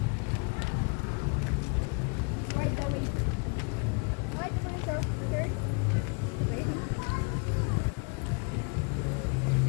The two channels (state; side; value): quieter; right; 35.2 dB